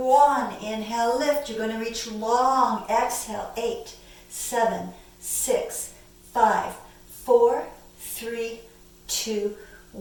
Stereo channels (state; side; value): identical; both; correlation 1.00